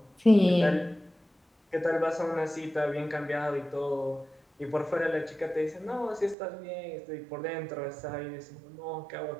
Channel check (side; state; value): left; drops out; at 6.4 s